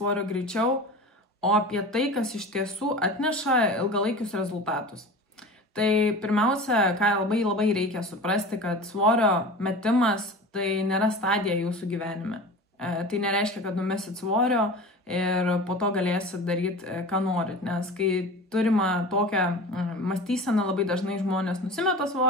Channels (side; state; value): both; normal; correlation 0.34